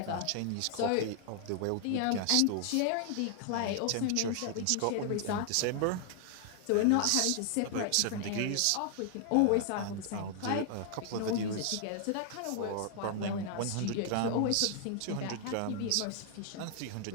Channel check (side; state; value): both; different; correlation 0.00